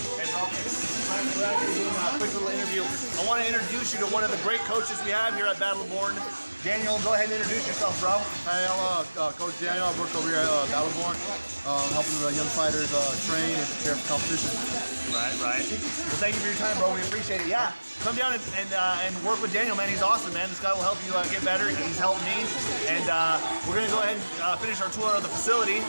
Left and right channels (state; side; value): inverted; both; correlation -1.00